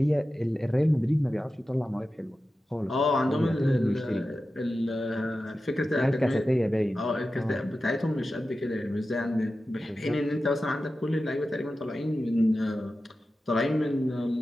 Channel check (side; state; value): both; normal; correlation 0.93